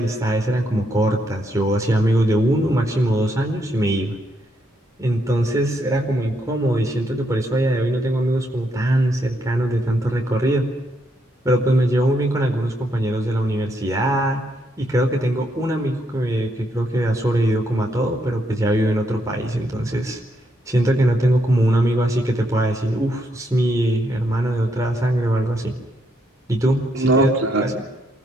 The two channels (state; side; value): normal; both; correlation 0.76